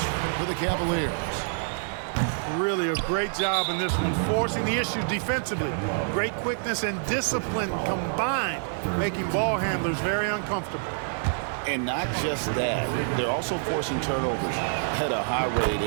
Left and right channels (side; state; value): left; silent; digital silence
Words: for the Cavaliers? Really a great job in this one, forcing the issue defensively. Great quickness and discipline combined, making ball handlers very uncomfortable. And not just that, they're also forcing turnovers at a high rate